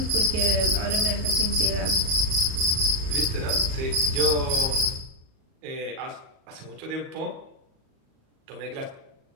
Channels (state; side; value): late; left; 37 ms